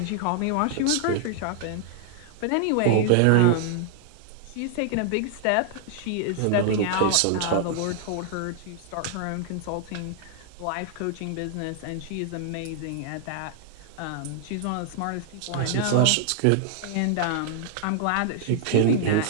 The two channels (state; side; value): different; both; correlation 0.00